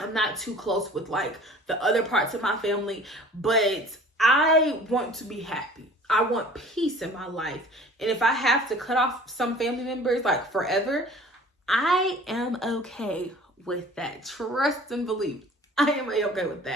I'm not too close with like the other parts of my family, but I want to be happy. I want peace in my life. And if I have to cut off some family members like forever, I am okay with that. Trust and believe. I am okay with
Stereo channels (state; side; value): normal; both; correlation 0.47